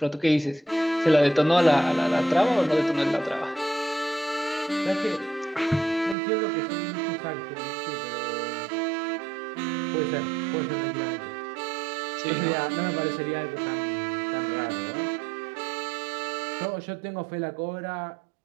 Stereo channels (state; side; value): drops out; left; at 6.2 s